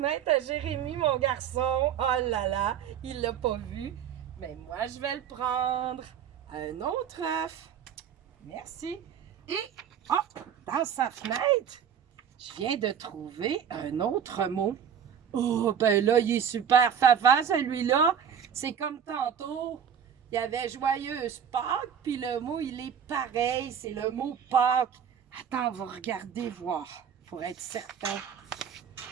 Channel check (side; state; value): left; quieter; 8.2 dB